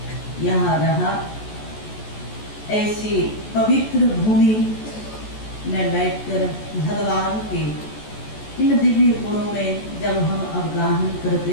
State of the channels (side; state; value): right; late; 14 ms